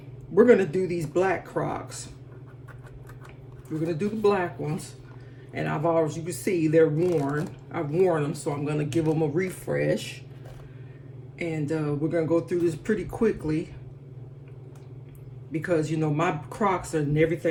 we're gonna do these black Crocs. We're gonna do the black ones. And I've already, you can see they're worn. I've worn them, so I'm gonna give them a refresh. And we're gonna go through this pretty quickly because, you know, my Crocs and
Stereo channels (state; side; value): identical; both; correlation 1.00